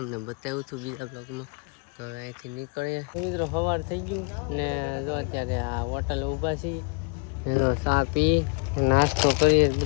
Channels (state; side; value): quieter; right; 36.3 dB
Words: બતાવ્યું હતું બીજા બ્લોગમાં. તો હવે અહીંથી નીકળીએ. મિત્રો સવાર થઈ ગયું ને જો અત્યારે આ હોટલ ઊભા છીએ, એનો ચા પી નાસ્તો કરીએ.